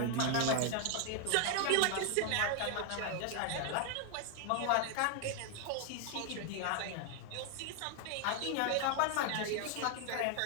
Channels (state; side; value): different; both; correlation 0.00